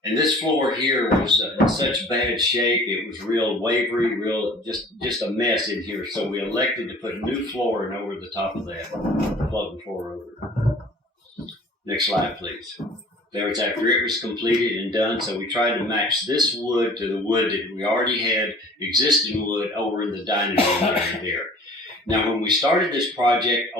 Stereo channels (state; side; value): normal; both; correlation 0.48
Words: And this floor here was in such bad shape, it was real wavery, just a mess in here. So we elected to put new flooring over the top of that, floating floor over. Next slide, please. There was after it was completed and done, so we tried to match this wood to the wood that we already had, existing wood, over in the dining room area there. Now, when we started this project